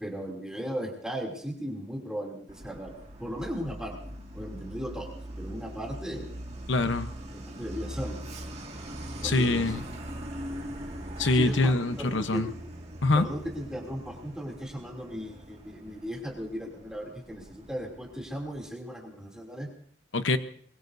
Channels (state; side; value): normal; both; correlation 0.65